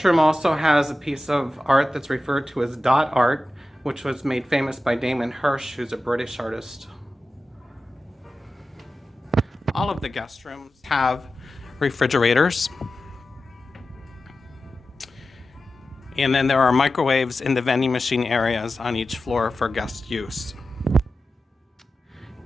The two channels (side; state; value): both; normal; correlation 0.93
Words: room also has a piece of art that's referred to as dot art, which was made famous by Damon Hirst, who's a British artist. All of the guest rooms have refrigerators. And then there are microwaves in the vending machine areas on each floor for guest use.